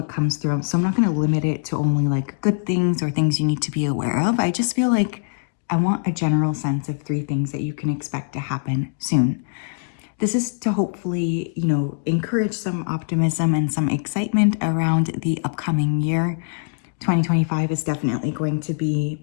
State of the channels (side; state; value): right; silent; digital silence